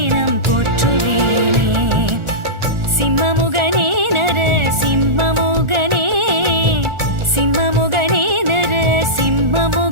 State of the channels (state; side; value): late; left; 1.4 ms